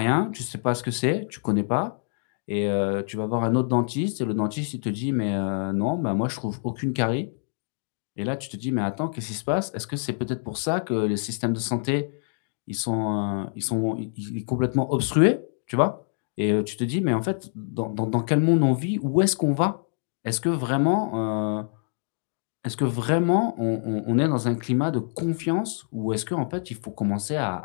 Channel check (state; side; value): silent; right; digital silence